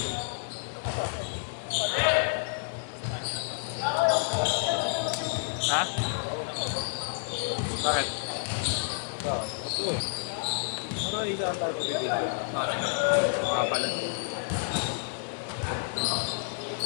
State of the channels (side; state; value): right; silent; 58 dB below the other